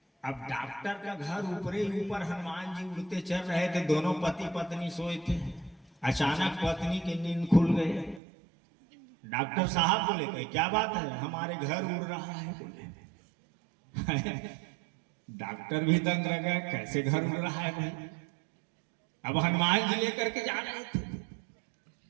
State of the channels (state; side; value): drops out; left; at 8.2 s